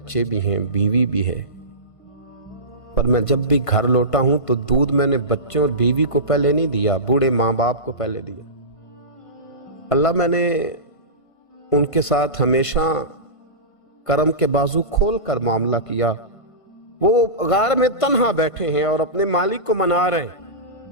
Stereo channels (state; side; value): late; right; 1.5 ms